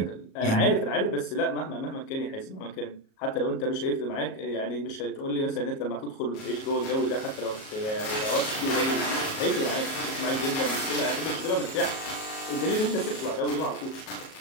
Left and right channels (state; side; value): late; right; 37 ms